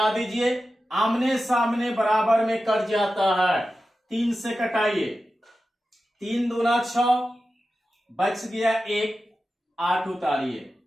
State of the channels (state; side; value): normal; both; correlation 0.93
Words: दीजिए, आमने सामने बराबर में कट जाता है। 3 से कटाइए, 3 दूना 6, बच गया 1, 8 उतारिए,